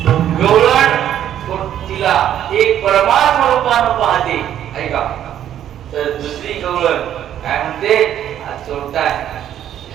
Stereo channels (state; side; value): quieter; left; 10.8 dB